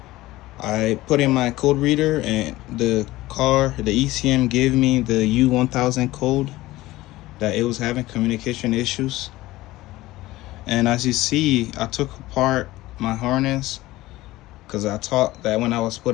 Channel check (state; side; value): quieter; right; 17.8 dB